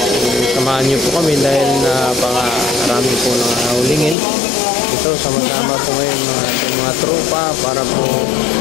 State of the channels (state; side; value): drops out; right; at 4.2 s